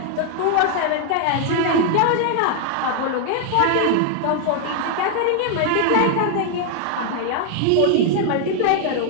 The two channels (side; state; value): both; different; correlation 0.00